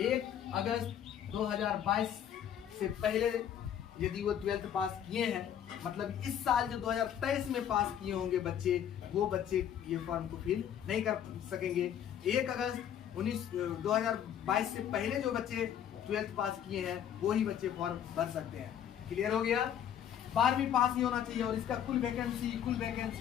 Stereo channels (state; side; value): quieter; right; 9.6 dB